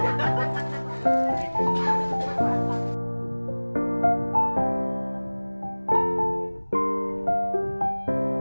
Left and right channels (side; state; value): both; inverted; correlation -1.00